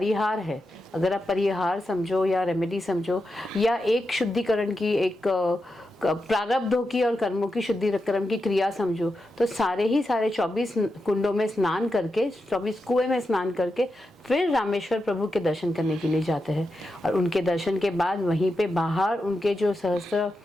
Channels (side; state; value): both; normal; correlation 0.88